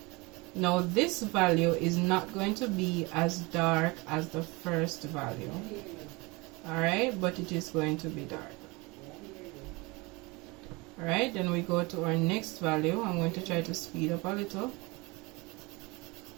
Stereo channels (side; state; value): left; quieter; 25.4 dB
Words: Now this value is not going to be as dark as the first value. Alright, but it is going to be dark. Alright, then we go to our next value. I'm going to try to speed up a little.